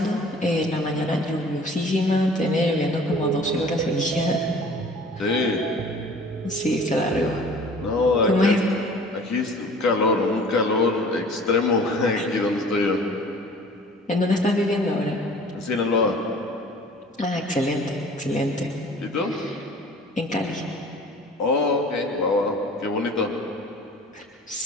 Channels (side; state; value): both; normal; correlation 0.47